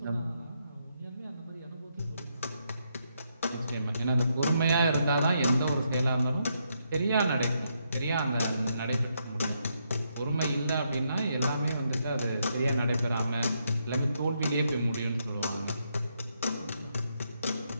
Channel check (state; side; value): inverted; both; correlation -0.78